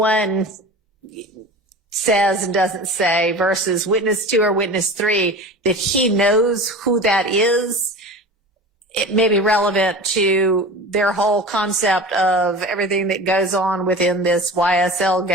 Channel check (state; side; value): normal; both; correlation 0.34